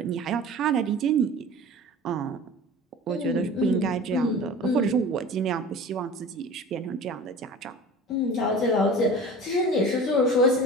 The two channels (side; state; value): both; normal; correlation 0.39